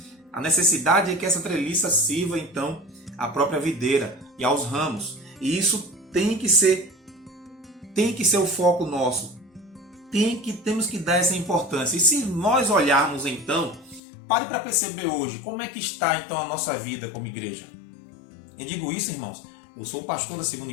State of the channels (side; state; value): right; drops out; at 14.0 s